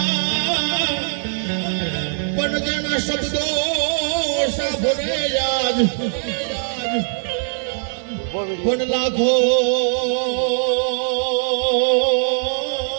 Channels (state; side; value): silent; left; digital silence